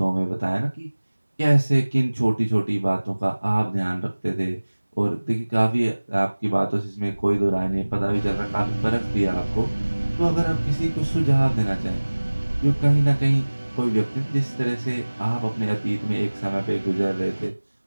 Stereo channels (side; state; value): both; inverted; correlation -1.00